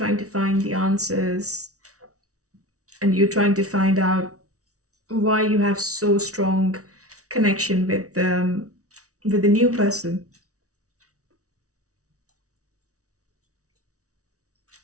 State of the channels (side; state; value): left; late; 0.66 ms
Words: to find the answers, and you're trying to find out why you have so strong connection with the new person.